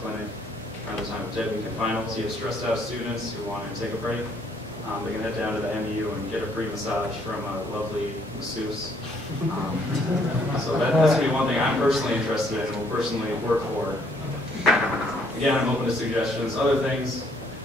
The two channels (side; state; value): both; normal; correlation 0.66